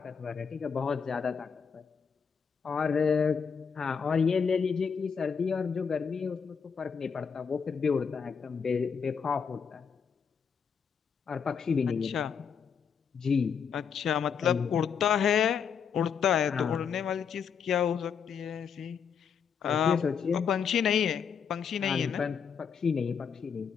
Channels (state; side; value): quieter; right; 6.7 dB